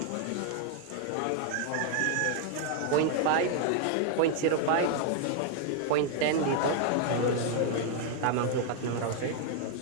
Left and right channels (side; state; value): both; different; correlation 0.00